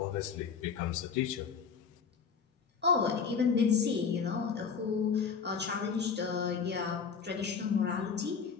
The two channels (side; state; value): right; quieter; 6.0 dB